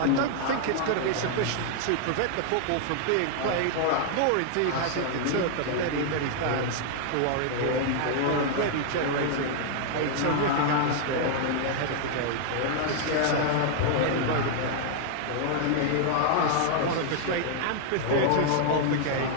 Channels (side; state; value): both; different; correlation 0.00